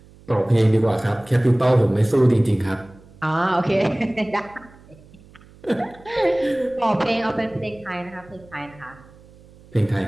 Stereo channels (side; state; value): right; noise; hum, 24 dB below the sound